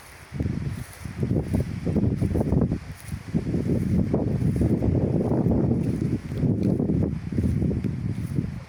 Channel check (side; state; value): both; identical; correlation 1.00